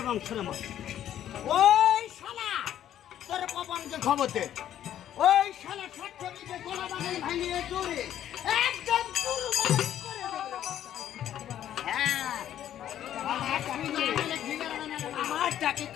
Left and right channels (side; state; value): right; quieter; 11.1 dB